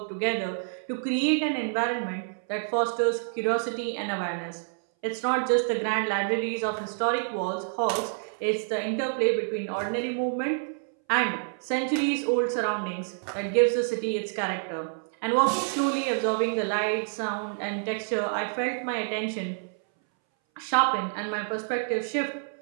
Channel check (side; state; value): left; silent; 59 dB below the other